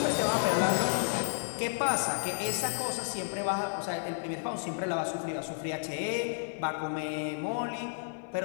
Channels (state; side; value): silent; right; 57 dB below the other